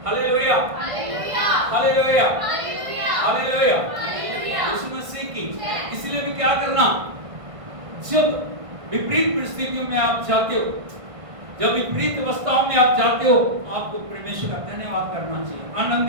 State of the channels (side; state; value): left; late; 1.5 ms